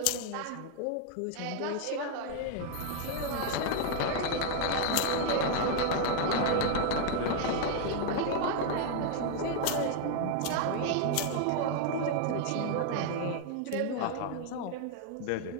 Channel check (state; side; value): different; both; correlation 0.00